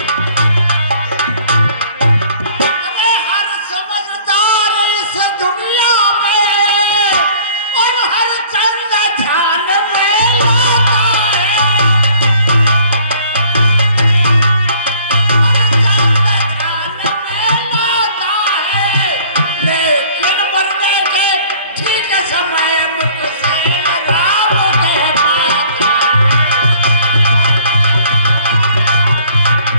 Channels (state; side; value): inverted; both; correlation -0.55